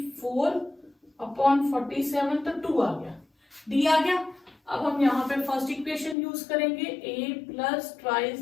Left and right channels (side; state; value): right; drops out; at 6.2 s